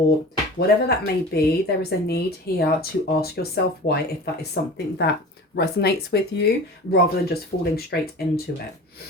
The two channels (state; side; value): normal; both; correlation 0.37